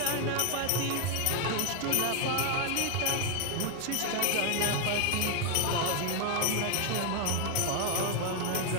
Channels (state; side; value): different; both; correlation 0.01